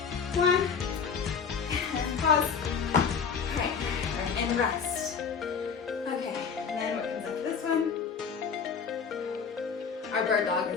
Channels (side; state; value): right; quieter; 6.2 dB